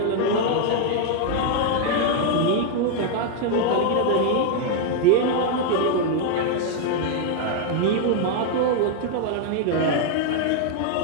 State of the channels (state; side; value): different; both; correlation 0.00